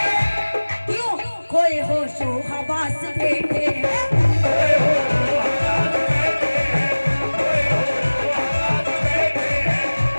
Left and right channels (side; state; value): both; inverted; correlation -1.00